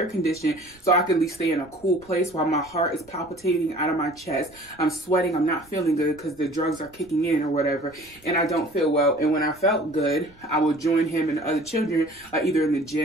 conditioning, so I could at least stay in a cool place while my heart is palpitating out of my chest. I'm sweating, I'm not feeling good because the drugs are kicking in or whatever, and I don't feel well. And when I felt good, I would join him and the other children either in the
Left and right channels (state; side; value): noise; right; rumble, 28 dB below the sound